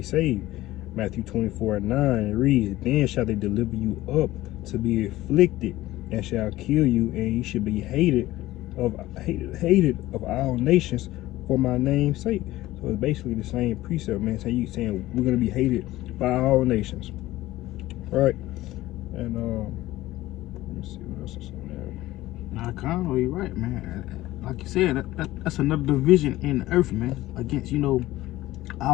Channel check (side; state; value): right; quieter; 16.6 dB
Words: saved." Matthew 24 and 9, it reads, "Then shall they deliver you up to be afflicted, and shall kill you, and ye should be hated of all nations for my name's sake." So it's basically the same precept, man. So you saying we're gonna be hated by all nations, right? And let me see what else is on there. Nah, Conno, you're right, man. Like you said, that's another division in the earth, man. Against